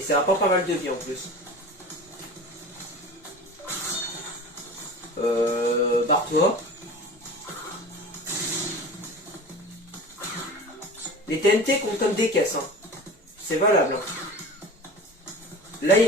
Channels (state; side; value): normal; both; correlation 0.36